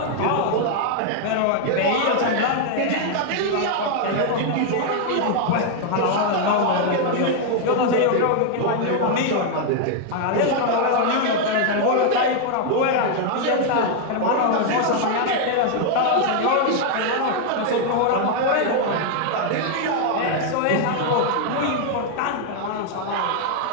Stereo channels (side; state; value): both; different; correlation 0.00